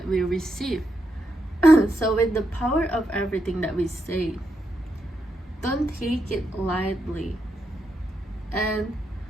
we receive. So with the power of everything that we say, don't take it lightly. And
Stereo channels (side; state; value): both; normal; correlation 0.83